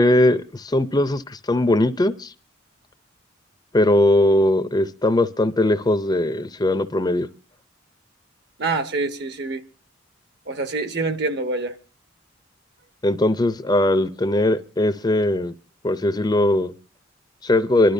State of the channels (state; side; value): normal; both; correlation 0.69